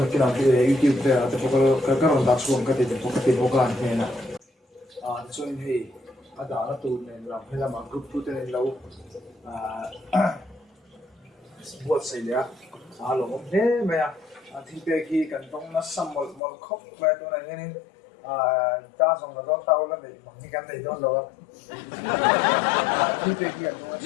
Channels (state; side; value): drops out; right; at 16.4 s